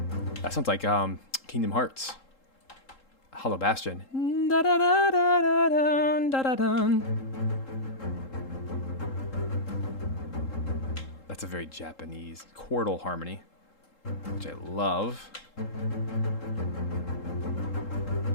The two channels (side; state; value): right; late; 3.8 ms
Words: That sounds like Kingdom Hearts. Hollow Bastion. That's a very Japanese chordal harmony, which I love.